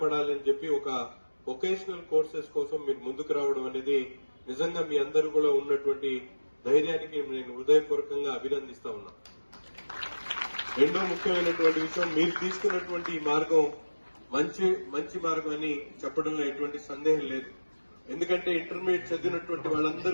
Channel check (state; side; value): inverted; both; correlation -1.00